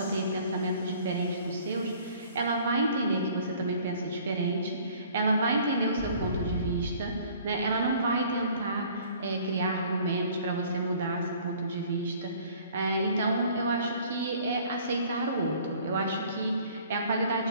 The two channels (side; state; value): both; inverted; correlation -0.53